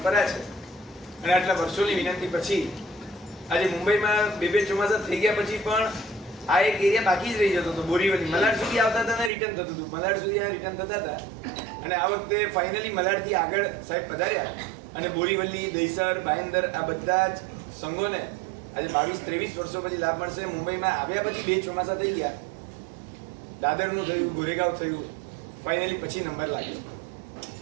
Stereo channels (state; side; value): drops out; left; at 9.3 s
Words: છે. અને આટલા વર્ષોની વિનંતી પછી આજે મુંબઈમાં બે ચોમાસા થઈ ગયા પછી પણ આ એક એરિયા બાકી જ રહી જતો હતો. બોરીવલી મલાડ સુધી આવતા હતા અને રિટર્ન થતું હતું, મલાડ સુધી રિટર્ન થતા હતા. અને આ વખતે ફાઇનલી મલાડથી આગળ સાહેબ પધાર્યા અને બોરીવલી, દહીસર, ભાયંદર આ બધા જ સંઘોને આજે 22-23 વર્ષો પછી લાભ મળશે. મુંબઈમાં આવ્યા પછી બે ચોમાસા થઈ ગયા, દાદરનું થયું, ગોરેગાંવ થયું, ફાઇનલી પછી નંબર લાગ્યો.